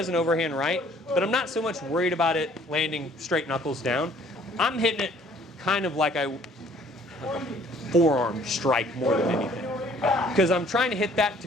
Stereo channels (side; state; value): both; normal; correlation 0.58